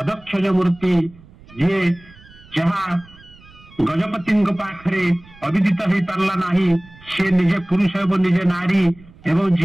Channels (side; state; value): right; noise; rumble, 24 dB below the sound